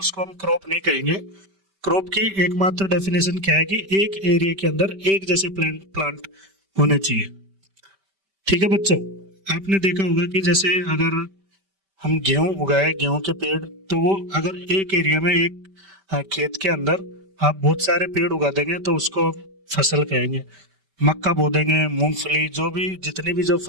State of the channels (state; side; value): late; left; 5.1 ms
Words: हम क्रॉप नहीं कहेंगे। क्रॉप की एकमात्र डेफिनेशन क्या है कि एक एरिया के अंदर एक जैसे प्लांट होने चाहिए। ठीक है बच्चों, आपने देखा होगा कि जैसे अगर हम गेहूं उगाए, गेहूं के पेड़, तो वो अगर एक एरिया में एक खेत के अंदर आप बहुत सारे पेड़ उगा देंगे तो उसको फसल कहेंगे। मक्का बो देंगे, मूंगफली, जो भी जितनी भी जो